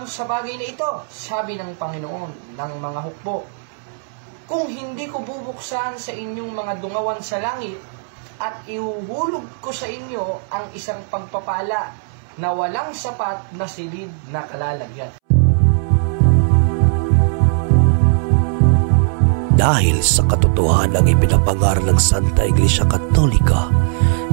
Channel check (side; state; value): left; silent; 67 dB below the other